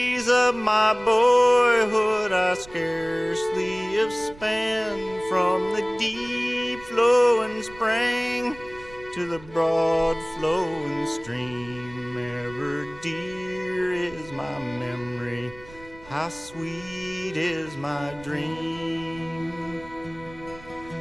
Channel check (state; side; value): noise; right; rumble, 20 dB below the sound